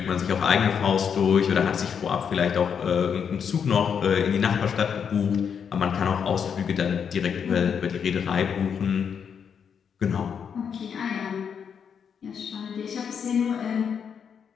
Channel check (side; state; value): right; quieter; 7.2 dB